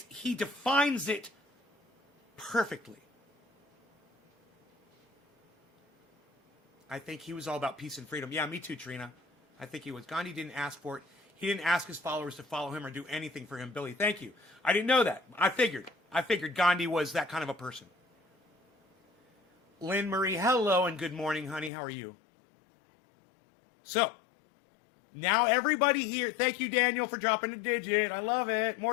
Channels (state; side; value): drops out; right; at 21.7 s